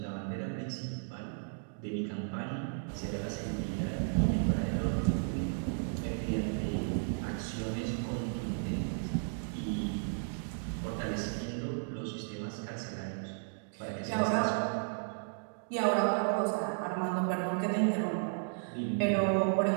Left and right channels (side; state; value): left; silent; digital silence